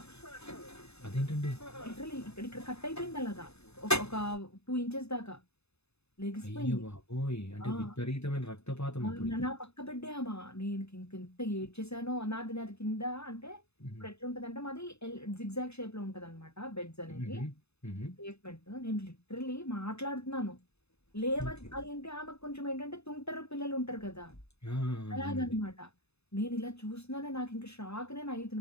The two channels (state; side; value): late; right; 0.80 ms